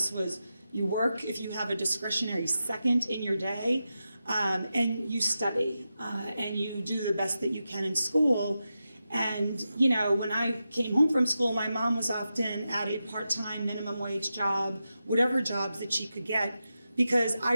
was you work if you have a discretionary second in your day, and you study, and you do the best that you can in school. And, when I came home from school, my mom was often at a part-time minimum wage job, whatever jobs that she could get, because I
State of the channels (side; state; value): both; inverted; correlation -0.90